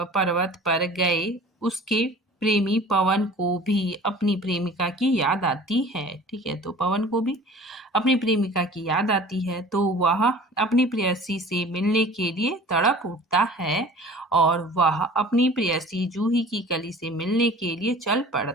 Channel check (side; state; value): both; normal; correlation 0.45